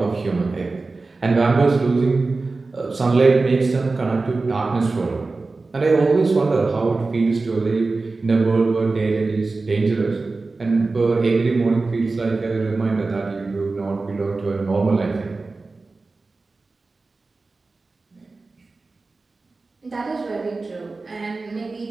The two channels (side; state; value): left; quieter; 3.7 dB